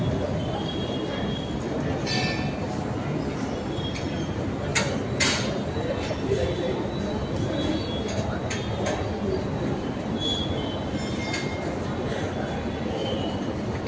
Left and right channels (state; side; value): identical; both; correlation 1.00